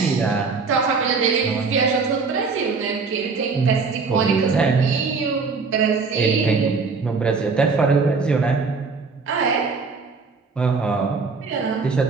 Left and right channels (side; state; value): left; quieter; 4.7 dB